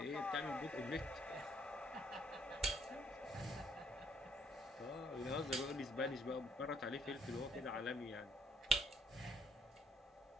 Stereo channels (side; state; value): both; normal; correlation 0.67